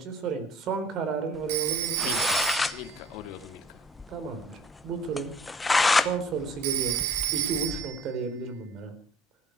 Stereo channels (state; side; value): normal; both; correlation 0.52